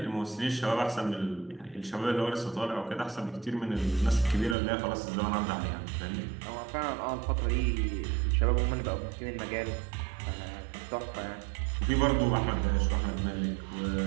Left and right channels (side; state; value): left; drops out; at 4.5 s